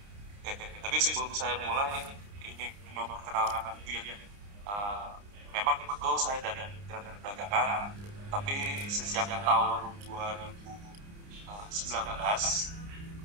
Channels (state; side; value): late; left; 29 ms